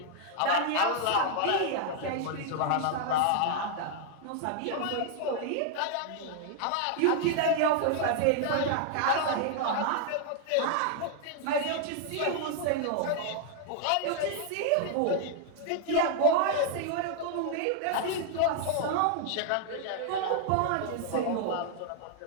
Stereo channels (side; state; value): both; different; correlation 0.00